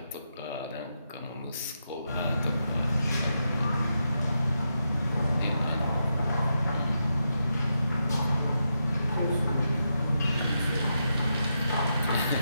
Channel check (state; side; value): inverted; both; correlation -0.85